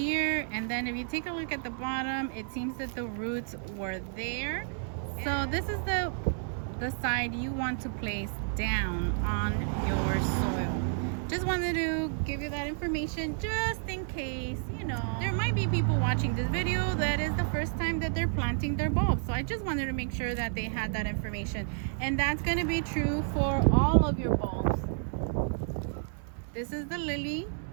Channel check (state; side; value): silent; left; 57 dB below the other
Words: And then if you take a look at the bottom, it seems that the roots were there. So this is the side you want to place down on your soil. Just wanted to give you that information just in case, you know, there might be people watching this video that is the first time that they're planting their bulbs. So I just wanted to make sure that they had that information. And that's going to be true for all of your bulbs. This is the lily.